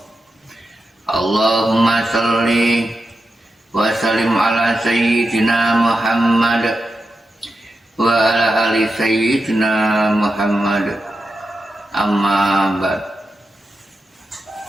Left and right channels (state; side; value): normal; both; correlation 0.89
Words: Allahumma shalli wa sallim ala sayyidina Muhammad wa ala ali sayyidina Muhammad. Amma ba'd.